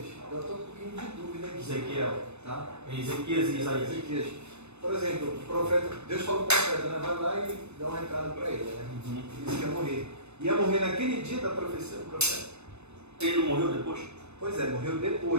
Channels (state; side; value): late; left; 0.81 ms